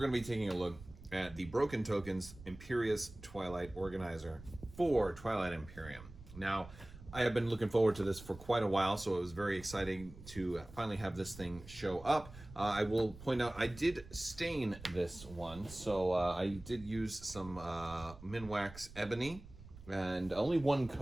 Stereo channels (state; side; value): noise; right; rumble, 17 dB below the sound